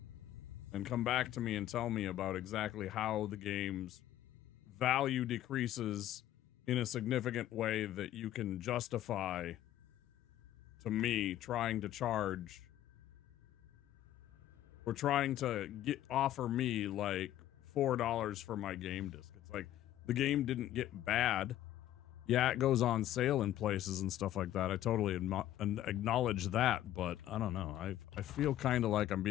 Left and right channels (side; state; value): right; quieter; 13.0 dB